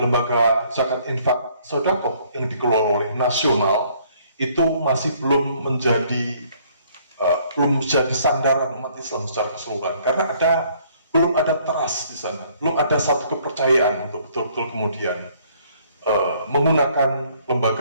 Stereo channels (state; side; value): inverted; both; correlation -0.62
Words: zakat infak sedekah yang dikelola oleh nasional itu masih belum menjadi sandaran umat Islam secara keseluruhan, karena belum ada trust di sana, belum ada satu kepercayaan untuk betul-betul kemudian menggunakan